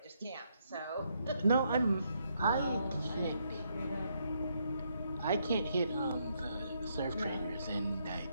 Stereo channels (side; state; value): both; inverted; correlation -0.76